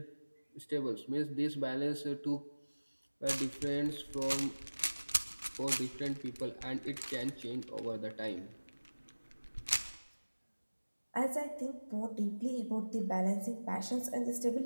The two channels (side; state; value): both; inverted; correlation -1.00